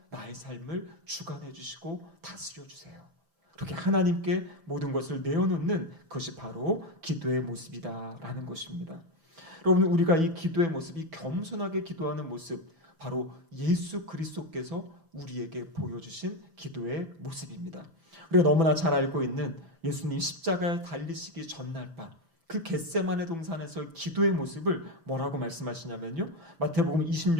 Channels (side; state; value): left; late; 6.0 ms